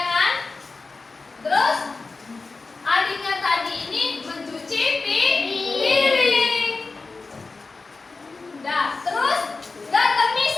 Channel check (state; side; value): quieter; right; 3.9 dB